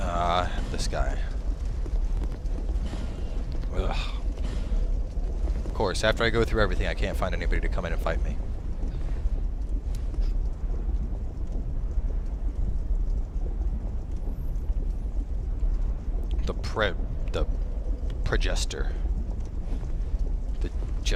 This guy. Ugh. Of course, after I go through everything, I can't find anybody to come in and fight me. The Progester. The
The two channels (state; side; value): identical; both; correlation 1.00